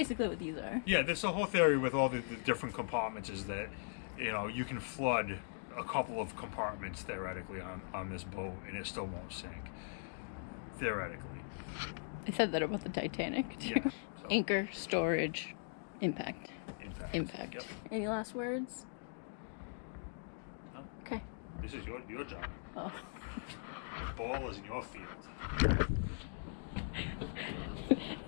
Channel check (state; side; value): silent; right; digital silence